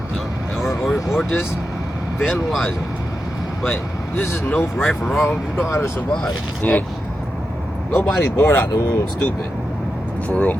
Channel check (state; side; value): normal; both; correlation 0.89